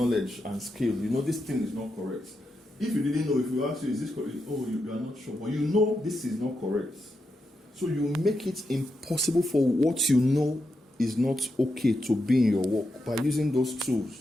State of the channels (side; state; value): both; normal; correlation 0.85